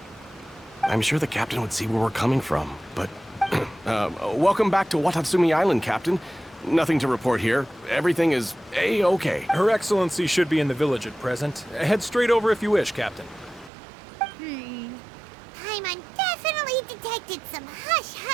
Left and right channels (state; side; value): drops out; left; at 13.7 s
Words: I'm sure the captain would see where we're coming from, but... welcome back to Watatsumi Island, Captain. Nothing to report here. Everything is A-okay. Her Excellency should be in the village at present. Head straight over if you wish, Captain. Paimon definitely detected some